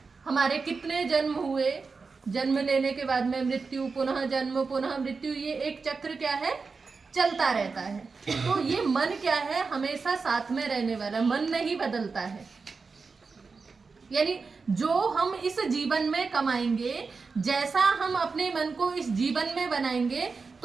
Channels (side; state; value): left; quieter; 4.6 dB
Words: हमारे कितने जन्म हुए, जन्म लेने के बाद में मृत्यु, पुनः जन्म, पुनः मृत्यु, ये एक चक्र क्या है? चलता रहता है। तो ये मन क्या है? हमेशा साथ में रहने वाला, मन नहीं बदलता है। यानी जो हम इस जीवन में कमाएंगे, जैसा हम अपने मन को इस जीवन में बनाएंगे,